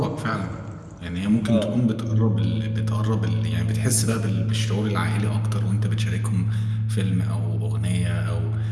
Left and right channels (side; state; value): both; identical; correlation 1.00